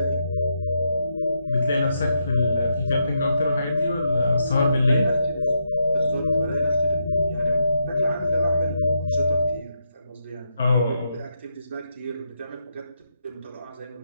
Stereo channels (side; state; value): both; inverted; correlation -0.81